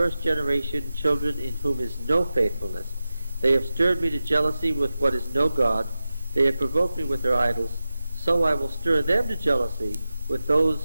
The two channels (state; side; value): inverted; both; correlation -0.93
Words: generation, children in whom is no faithfulness. They have stirred me to jealousy with what is no God. They have provoked me with their idols. So I will stir them to jealousy with